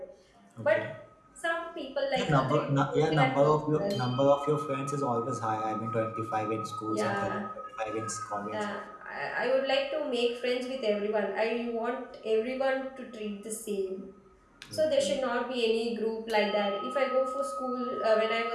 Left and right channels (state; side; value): identical; both; correlation 1.00